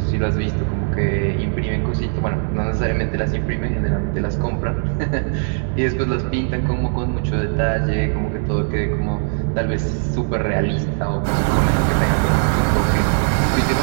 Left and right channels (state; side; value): silent; left; 66 dB below the other